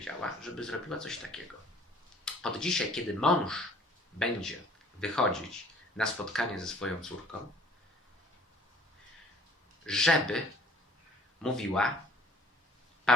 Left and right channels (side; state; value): both; normal; correlation 0.54